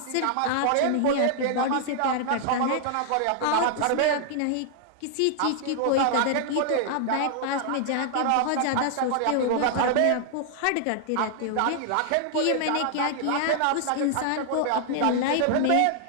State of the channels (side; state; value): both; different; correlation -0.01